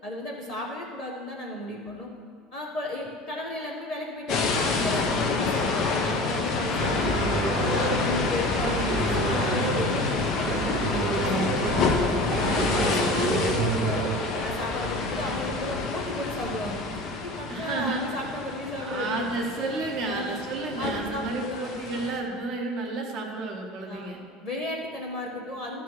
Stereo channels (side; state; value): both; normal; correlation 0.37